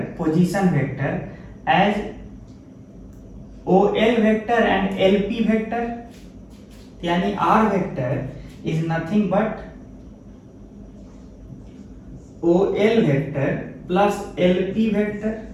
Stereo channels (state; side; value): identical; both; correlation 1.00